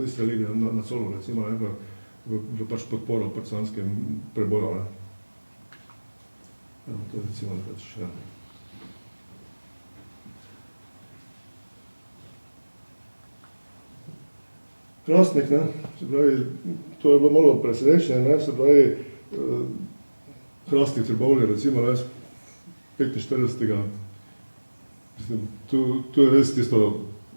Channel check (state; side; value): inverted; both; correlation -1.00